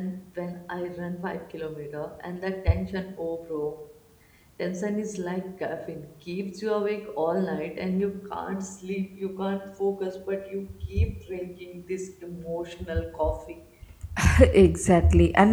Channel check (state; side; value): identical; both; correlation 1.00